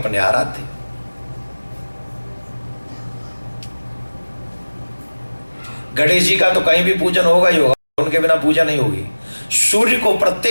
आराध्य। गणेश जी का तो कहीं भी पूजन होगा ही होगा, उनके बिना पूजा नहीं होगी। सूर्य को,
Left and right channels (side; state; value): both; inverted; correlation -1.00